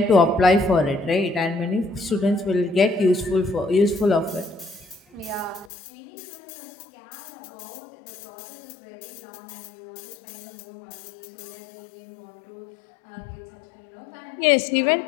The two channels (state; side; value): drops out; right; at 5.7 s